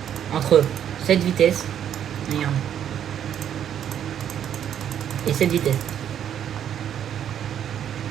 entre cette vitesse, regarde, et cette vitesse.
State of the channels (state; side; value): quieter; left; 9.6 dB